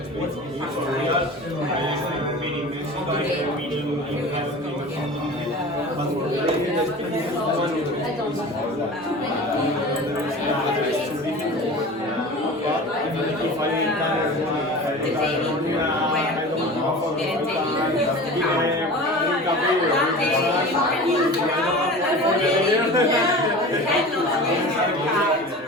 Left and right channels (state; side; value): normal; both; correlation 0.36